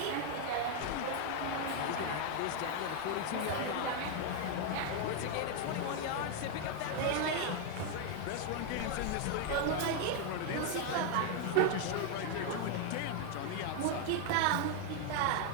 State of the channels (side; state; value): both; different; correlation 0.01